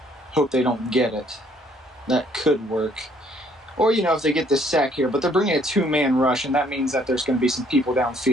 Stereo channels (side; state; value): both; normal; correlation 0.64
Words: hope they don't get it. That could work. Or, if they get this sack here, but they're bringing a 2-man rush, and that means that there's going to be some people